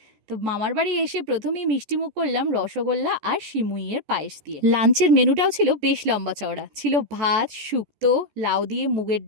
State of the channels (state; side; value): late; left; 14 ms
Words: তো মামার বাড়ি এসে প্রথমেই মিষ্টিমুখ করলাম রসগোল্লা আর সিমুইয়ের পায়েস দিয়ে। লাঞ্চের মেনুটাও ছিল বেশ লম্বা চওড়া, ছিল ভাত, শুক্তো, লাউ দিয়ে মুগের